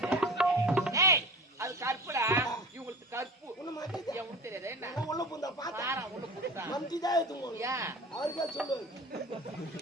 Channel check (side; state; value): both; normal; correlation 0.37